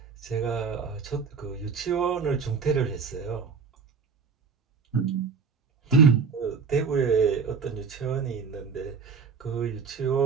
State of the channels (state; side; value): quieter; left; 5.5 dB